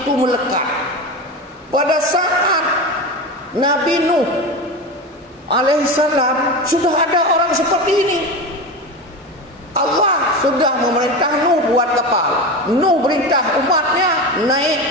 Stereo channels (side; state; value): both; normal; correlation 0.24